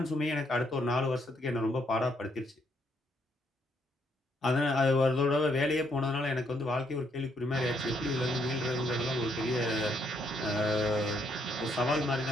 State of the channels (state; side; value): normal; both; correlation 0.72